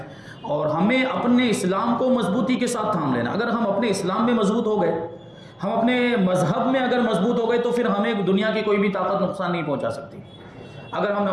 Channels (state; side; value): identical; both; correlation 1.00